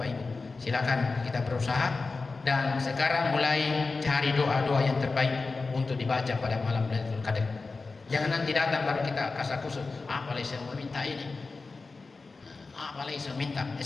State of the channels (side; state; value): right; quieter; 3.9 dB